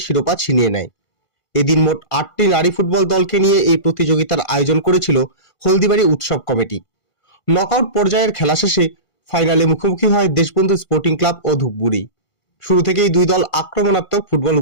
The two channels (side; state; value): right; late; 1.5 ms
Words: শিরোপা ছিনিয়ে নেয়। এদিন মোট 8টি নারী ফুটবল দলকে নিয়ে এই প্রতিযোগিতার আয়োজন করেছিল হলদিবাড়ি উৎসব কমিটি। নকআউট পর্যায়ের খেলা শেষে ফাইনালে মুখোমুখি হয় দেশবন্ধু স্পোর্টিং ক্লাব ও ধূপগুড়ি। শুরু থেকেই দুই দল আক্রমণাত্মক ফুটবল